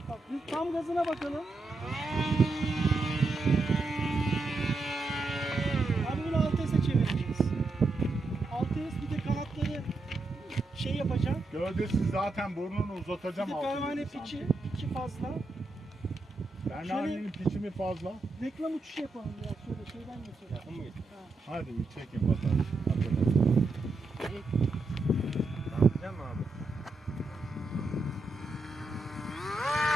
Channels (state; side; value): quieter; left; 3.2 dB